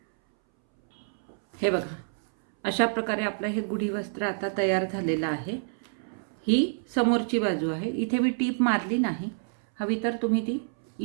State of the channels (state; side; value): silent; left; 59 dB below the other